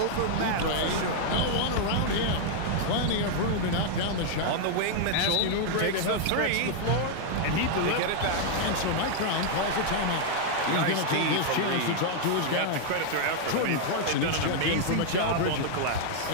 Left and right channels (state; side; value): different; both; correlation -0.01